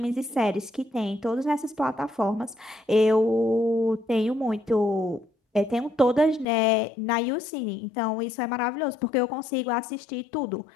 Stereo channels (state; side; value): drops out; right; at 6.5 s